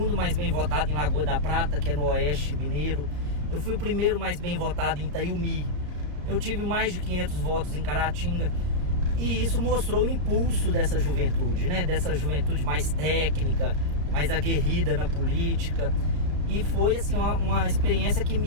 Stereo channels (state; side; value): late; left; 34 ms